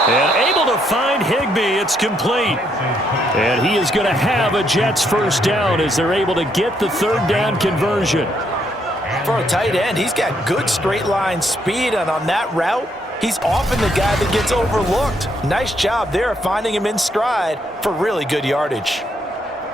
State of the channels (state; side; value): normal; both; correlation 0.74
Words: And able to find Higbee. It's complete. And he is going to have a Jets 1st down as they're able to get the 3rd down conversion. For a tight end, he's got good straight line speed, and on that route, he's often the guy that gets overlooked. Nice job there finding him in stride for really good yardage.